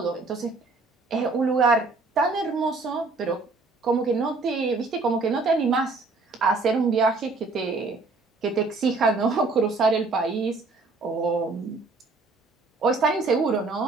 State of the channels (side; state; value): left; quieter; 3.7 dB